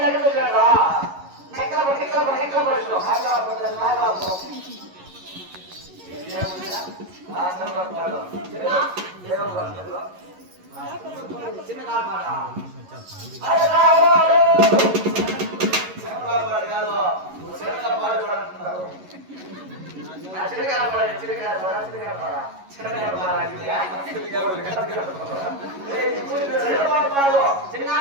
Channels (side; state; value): left; late; 11 ms